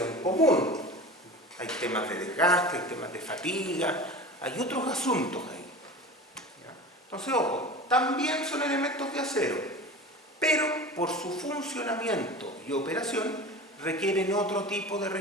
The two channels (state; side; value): normal; both; correlation 0.34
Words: común. Hay temas de desgaste, hay temas de fatiga, hay otros asuntos ahí. ¿Ya? Entonces, ojo, también son elementos de acero, pero por su funcionamiento y operación requieren otro tipo de